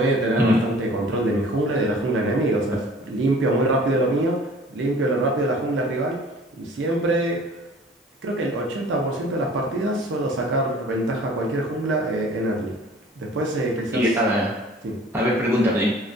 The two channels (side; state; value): both; normal; correlation 0.48